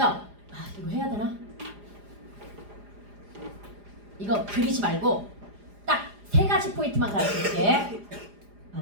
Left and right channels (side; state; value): left; late; 4.9 ms